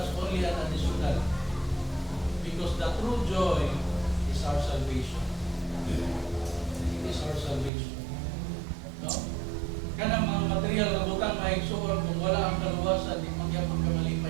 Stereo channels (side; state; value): left; drops out; at 7.7 s